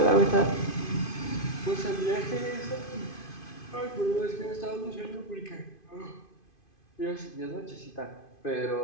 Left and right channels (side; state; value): right; late; 2.5 ms